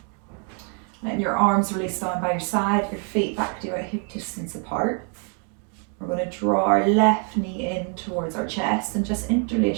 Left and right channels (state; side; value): quieter; left; 39.1 dB